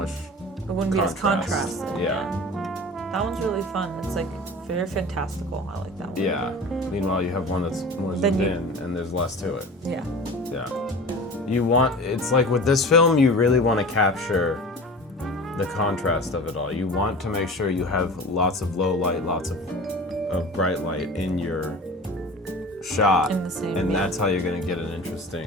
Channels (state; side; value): normal; both; correlation 0.37